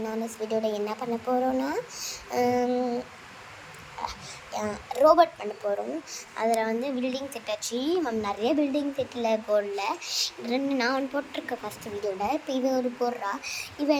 வீடியோவில் என்ன பண்ண போகிறோன்னா ரோபோட் பண்ண போகிறோம். அதில் வந்து பில்டிங் செட் ஆச்சு. நிறைய பில்டிங் செட்டில் போடல, நான் ஒன்று போட்டிருக்கேன் ஃபஸ்ட்டு வீடியோவில். இப்போ இவன் ஒரு போடுறா.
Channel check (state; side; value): identical; both; correlation 1.00